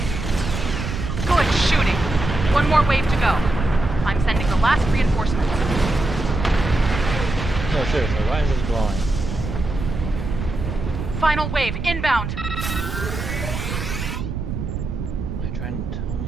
Good shooting. One more wave to go. I'm sending the last reinforcement. No, seriously, why is this glowing? Final wave inbound. Are you trying to tell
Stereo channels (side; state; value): right; noise; rumble, 5 dB below the sound